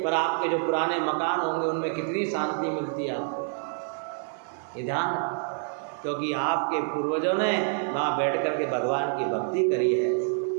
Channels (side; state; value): left; silent; digital silence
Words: पर आपके जो पुराने मकान होंगे उनमें कितनी शांति मिलती है आपको। ये ध्यान, क्योंकि आपके पूर्वजों ने वहाँ बैठ कर के भगवान की भक्ति करी है,